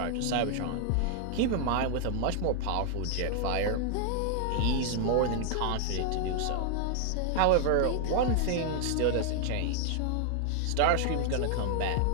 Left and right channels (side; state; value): both; different; correlation 0.00